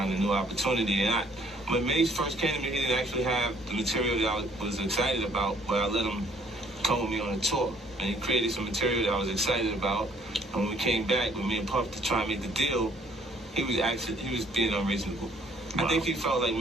a new opportunity. And when Mace first came to me, he didn't actually have the material that I was excited about, but I let him come with me on a tour. And he created some material that I was excited about. And when we came back with me and Puff to try and make the deal, he was being unreasonable. Wow. I think he felt like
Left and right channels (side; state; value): both; normal; correlation 0.61